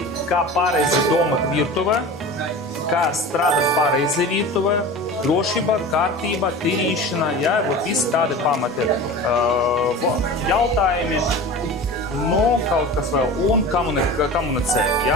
kā pareizi domāt virtuvē, kā strādāt pareizi virtuvē, drošība, kārtība, tīrīšana, jā, visi tādi pamati jautājumi, kaut kas vēl, un komunicēt,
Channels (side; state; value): both; normal; correlation 0.34